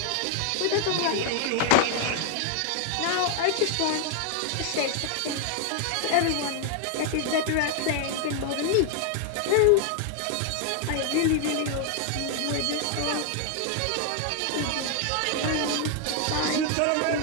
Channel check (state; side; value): different; both; correlation 0.00